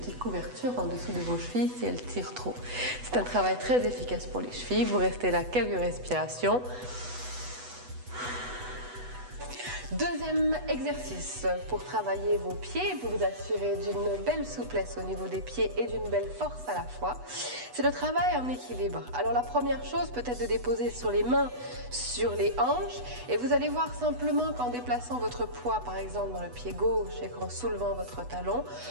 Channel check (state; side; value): late; left; 8.1 ms